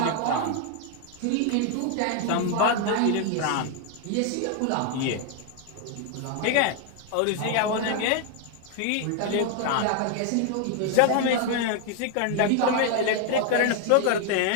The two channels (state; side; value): different; both; correlation 0.00